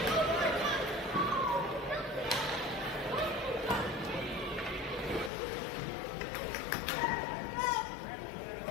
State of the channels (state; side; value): drops out; right; at 5.3 s